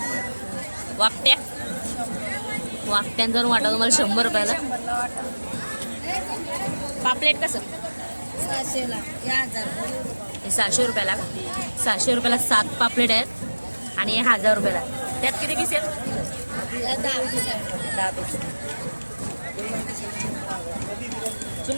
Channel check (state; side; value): inverted; both; correlation -1.00